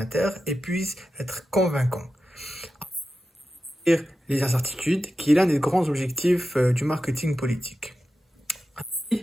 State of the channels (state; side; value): normal; both; correlation 0.92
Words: et puisse être convaincant. Les incertitudes, qui est l'un des grands objectifs du marketing politique.